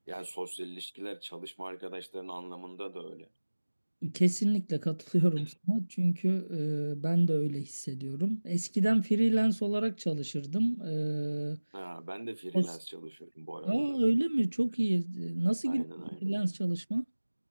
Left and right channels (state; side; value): inverted; both; correlation -1.00